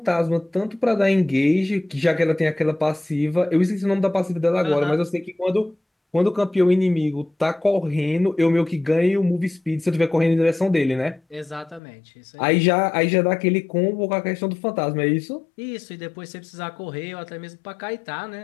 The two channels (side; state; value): right; drops out; at 11.8 s